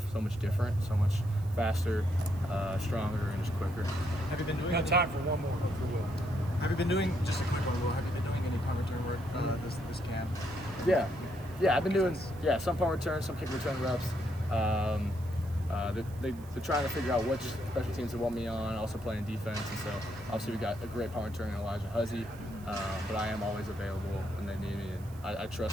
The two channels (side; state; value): right; noise; hiss, 24 dB below the sound